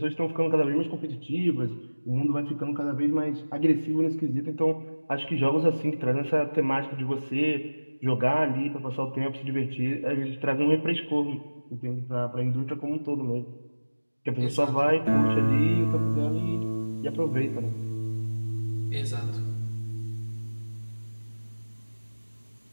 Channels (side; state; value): both; inverted; correlation -1.00